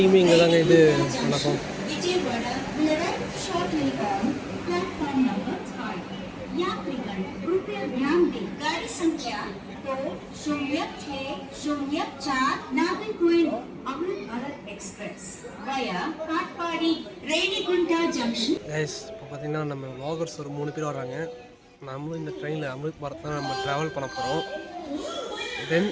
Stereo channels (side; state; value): both; identical; correlation 1.00